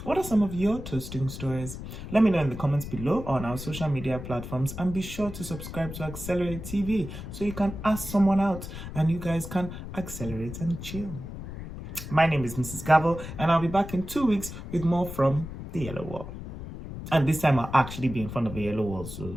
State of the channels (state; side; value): noise; left; rumble, 10 dB below the sound